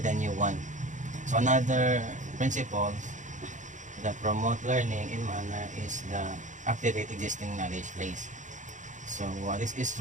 a new one. So another principle that promote learning in manner is the activate existing knowledge base. So this is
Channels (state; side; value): late; left; 0.36 ms